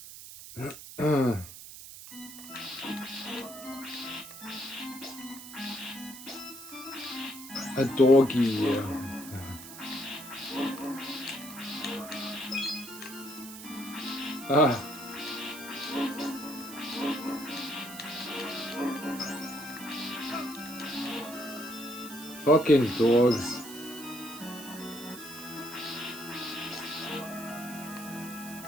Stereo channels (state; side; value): noise; right; hiss, 13 dB below the sound